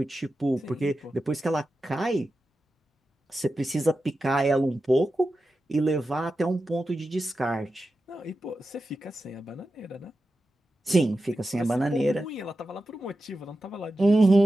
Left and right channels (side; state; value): both; normal; correlation 0.92